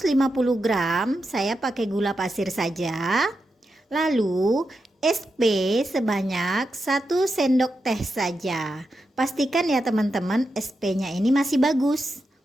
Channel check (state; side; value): normal; both; correlation 0.87